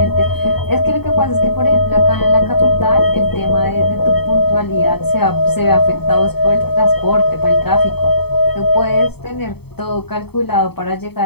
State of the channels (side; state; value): right; late; 0.97 ms